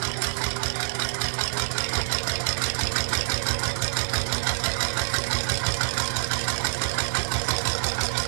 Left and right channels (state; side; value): silent; left; 56 dB below the other